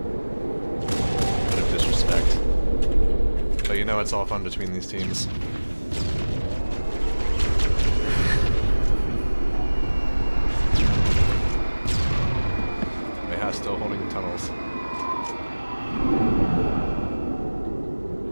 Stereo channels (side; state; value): both; inverted; correlation -1.00